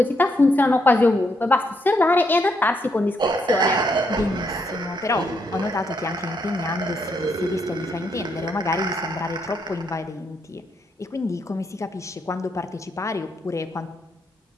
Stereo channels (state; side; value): normal; both; correlation 0.76